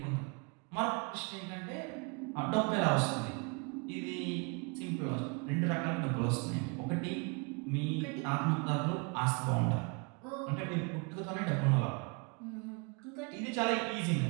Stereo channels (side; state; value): left; quieter; 33.1 dB